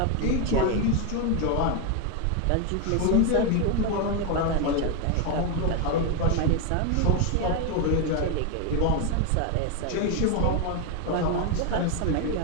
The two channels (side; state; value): both; different; correlation 0.01